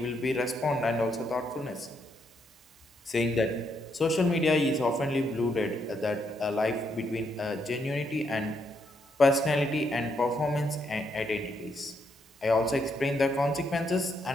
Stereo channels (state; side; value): normal; both; correlation 0.77